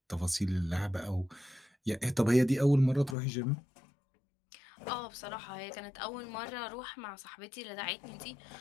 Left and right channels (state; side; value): drops out; right; at 3.2 s